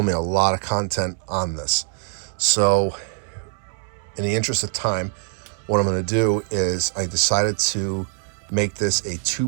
a lot of content on this. So in the interest of time, what I'm going to do is I decided to make this a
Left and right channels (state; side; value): silent; left; digital silence